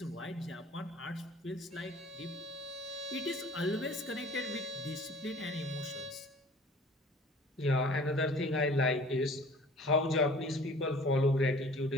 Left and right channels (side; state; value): both; normal; correlation 0.48